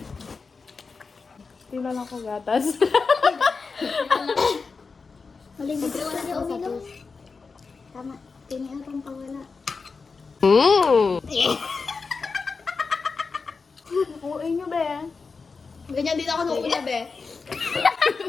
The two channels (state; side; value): quieter; right; 4.6 dB